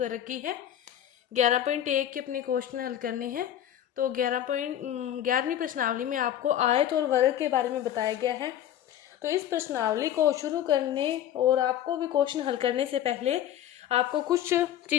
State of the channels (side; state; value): right; quieter; 11.2 dB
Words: रखी है। 11.1 के अपने क्वेश्चन हल करने हैं। तो 11वीं प्रश्नावली में आपको आयत और वर्ग के बारे में बताया गया है। तो इस प्रश्नावली को शुरू करने और आपको भी क्वेश्चन हल करने से पहले आपको कुछ